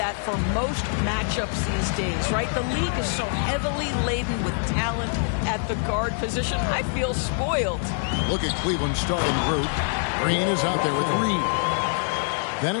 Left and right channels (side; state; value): right; silent; 61 dB below the other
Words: for most matchups these days, right? The league is so heavily laden with talent at the guard position. I feel spoiled. Look at Cleveland's starting group. Green is out there with Reed. Then